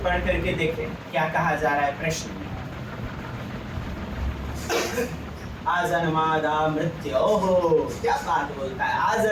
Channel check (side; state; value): both; identical; correlation 1.00